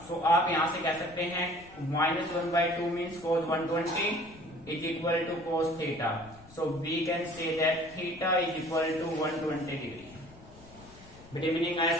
सो आप यहां से कह सकते हैं minus 1/2 means cos 120 is equal to cos theta. So we can say that theta is equal to 120 degree. बेटे मीनिंग आया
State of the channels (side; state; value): left; noise; rumble, 22 dB below the sound